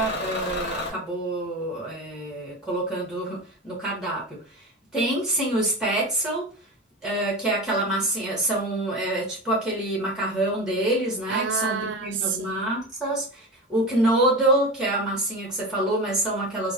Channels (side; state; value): both; normal; correlation 0.26